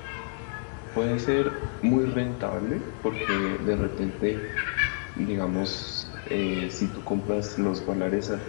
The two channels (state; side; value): silent; right; digital silence